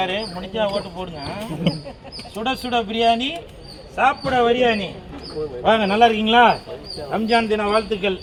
முடிஞ்சா ஓட்டு போடுங்க. சுட சுட பிரியாணி சாப்பிட பிரியாணி. வாங்க, நல்லா இருக்கீங்களா? ரம்ஜான் தின வாழ்த்துக்கள்.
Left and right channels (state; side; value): identical; both; correlation 1.00